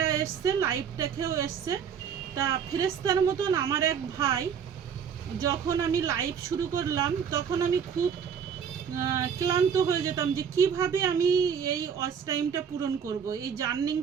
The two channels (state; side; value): quieter; left; 7.4 dB